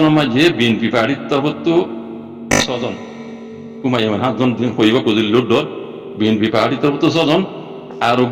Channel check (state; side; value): identical; both; correlation 1.00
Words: में जे BNP पार्टी तब तो सजन कुमायमान हाथ जन दिन कोई बात कुछ लुट डर BNP पार्टी तरफ तो सजन